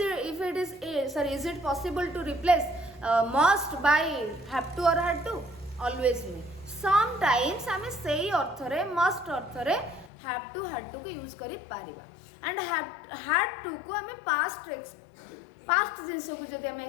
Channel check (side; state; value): right; drops out; at 10.1 s